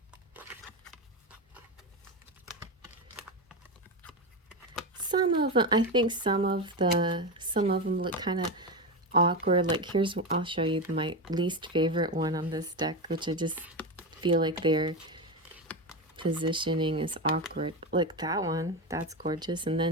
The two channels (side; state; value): both; normal; correlation 0.16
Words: some of them, I think some of them look kind of awkward. Like, I'll show you my least favorite one on this deck, which I just feel like their positioning is awkward. Like that one, that's gorgeous, and